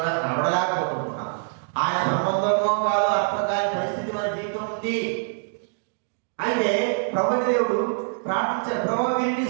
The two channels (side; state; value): left; silent; digital silence